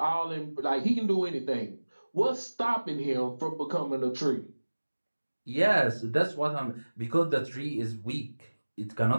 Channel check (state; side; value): inverted; both; correlation -1.00